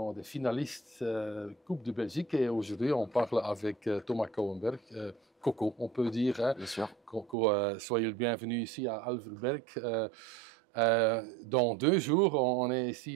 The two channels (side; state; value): left; drops out; at 7.4 s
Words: des finalistes Coupe de Belgique et aujourd'hui on parle avec Thomas Kouwenberg. Coco, on peut dire. Hein. Bien sûr. Coco, soyez le bienvenu ici à Alverberg. Dans 2 jours, on est